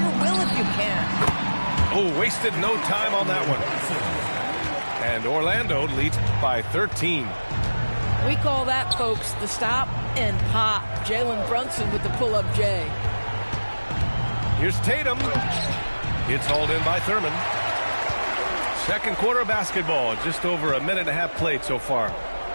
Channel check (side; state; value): both; inverted; correlation -1.00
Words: will if you can. Oh, wasted no time on that one. And Orlando leads by 13. We call that, folks, the stop and pop. Jalen Brunson with the pull-up J. Here's Tatum. It's hauled in by Thurman. Second quarter of basketball, just over a minute and a half played so far.